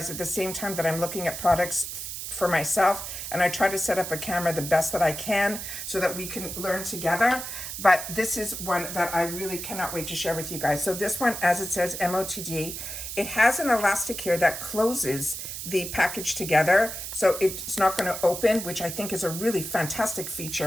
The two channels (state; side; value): noise; right; hiss, 7 dB below the sound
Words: at the same time that I'm looking at products for myself, and I try to set up a camera the best that I can so that we can learn together. But this is one that I really cannot wait to share with you guys. So this one, as it says MOTD, it has an elastic here that closes the package together, so it's not going to open, which I think is a really fantastic